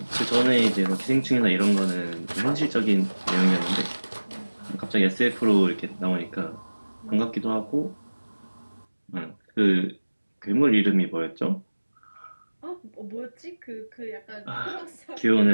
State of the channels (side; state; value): both; inverted; correlation -1.00